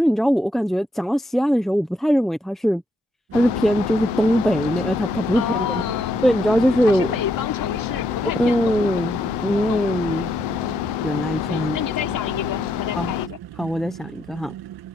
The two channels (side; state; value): both; normal; correlation 0.77